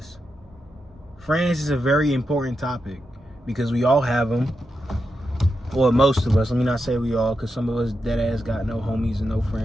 friends is a very important topic because we all have them. Or most of us, let me not say we all, because some of us dead ass got no homies and no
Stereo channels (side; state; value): both; normal; correlation 0.87